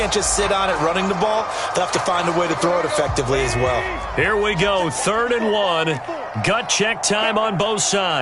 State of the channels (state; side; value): identical; both; correlation 1.00